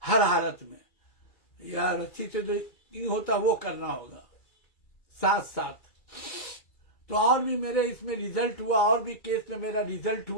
हर हालत में, या रस्सी से जो नहीं होता वो करना होगा साथ साथ। तो और भी मेरे इसमें रिजल्ट हुआ, और भी केस में मेरा रिजल्ट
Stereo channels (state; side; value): late; right; 2.3 ms